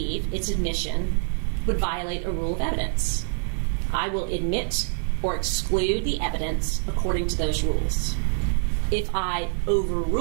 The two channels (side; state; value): left; silent; digital silence